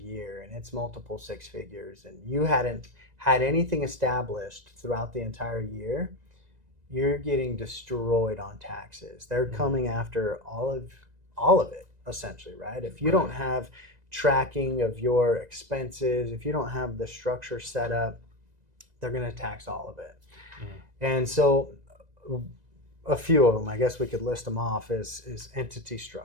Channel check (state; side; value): late; left; 1.9 ms